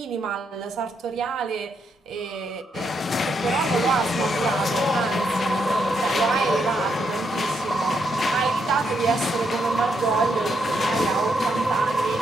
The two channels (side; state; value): both; normal; correlation 0.78